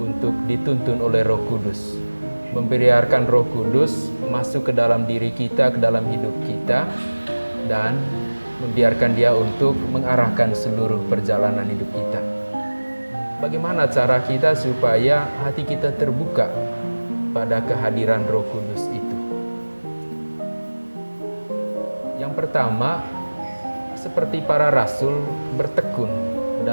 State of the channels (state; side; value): inverted; both; correlation -1.00